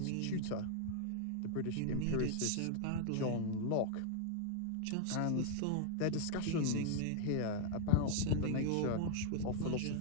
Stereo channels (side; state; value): both; different; correlation 0.00